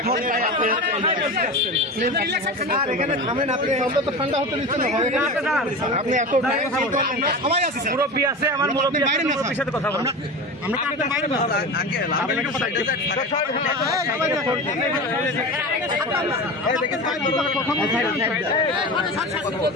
ভোট চাই আপনি? আর এখানে থামেন আপনি। আমরা তো ঠান্ডা হতে দিচ্ছেন না। আপনি এত সবাই আছে, মুরব্বি আছে, আমার মুরব্বি আছে, মুরব্বির সাথে কথা বলেন। আমরা তো আপনার বাইরে না আঙ্কেল, আপনি একটু সাইডে যান। এই দেখেন সাইড কথা বলছেন।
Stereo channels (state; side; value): normal; both; correlation 0.28